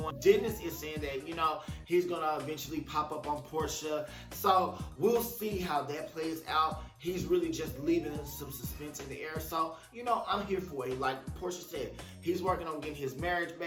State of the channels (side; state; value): both; identical; correlation 1.00